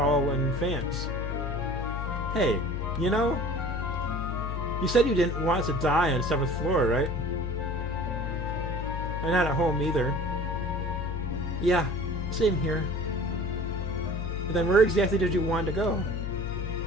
in advance. Hey, you know, you said you didn't want to die on the 7th floor, right? And not at home either. Yeah, same here. Then where exactly did you want to go?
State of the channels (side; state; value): left; noise; hum, 3 dB below the sound